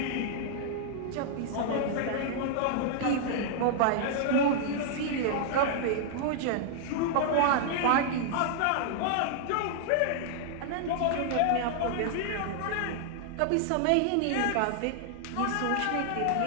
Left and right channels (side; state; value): both; different; correlation -0.01